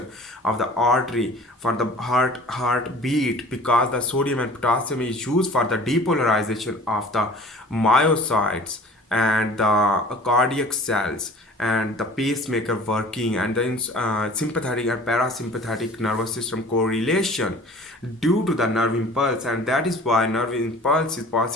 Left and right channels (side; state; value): both; normal; correlation 0.46